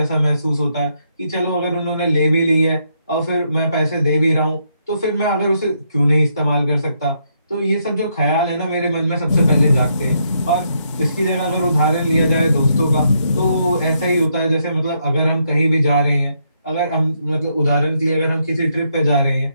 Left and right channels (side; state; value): both; inverted; correlation -0.77